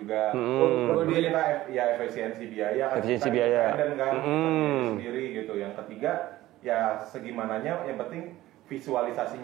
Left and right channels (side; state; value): left; quieter; 15.9 dB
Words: Terus kita ya efisiensi biaya kan. Efisiensi Kita biaya. independen kan, sendiri gitu. Yang ketiga ya segimananya yang penting